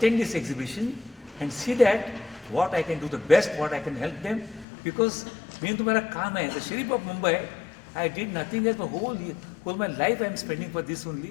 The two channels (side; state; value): right; drops out; at 4.7 s